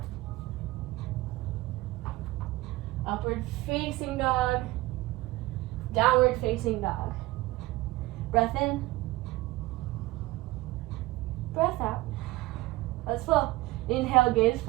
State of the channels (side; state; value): left; quieter; 19.3 dB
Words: Upward facing dog, downward facing dog. Breath in, breath out. Let's flow. Inhale, gaze